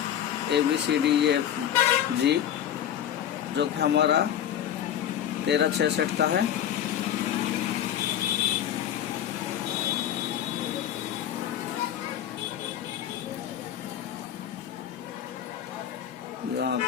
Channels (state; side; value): quieter; right; 10.3 dB